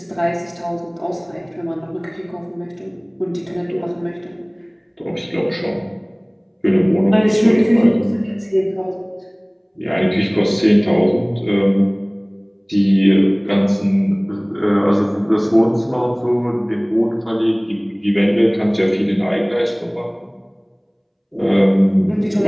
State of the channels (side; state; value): both; identical; correlation 1.00